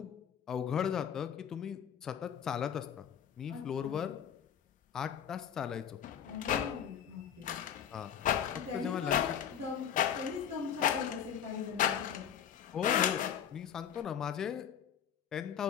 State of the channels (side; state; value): right; quieter; 8.8 dB